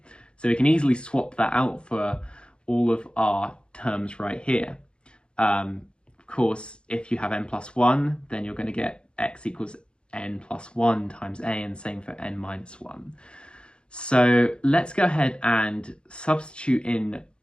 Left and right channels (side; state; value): right; late; 0.053 ms